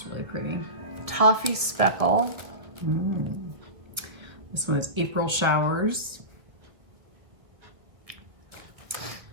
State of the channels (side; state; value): left; late; 1.7 ms